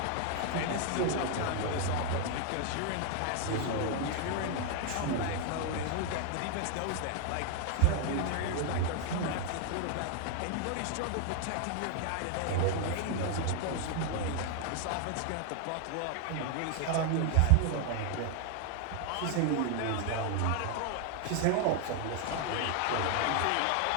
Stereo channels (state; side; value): different; both; correlation 0.00